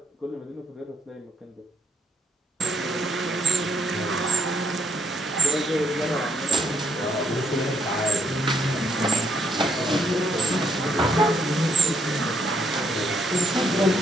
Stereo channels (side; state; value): both; normal; correlation 0.72